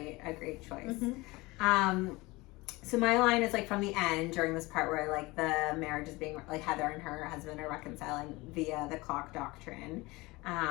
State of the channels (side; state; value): right; quieter; 22.3 dB